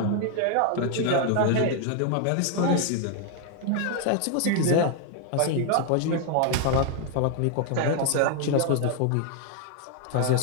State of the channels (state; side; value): different; both; correlation 0.00